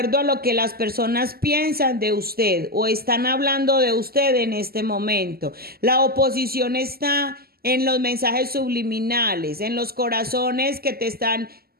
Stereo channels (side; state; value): left; late; 0.45 ms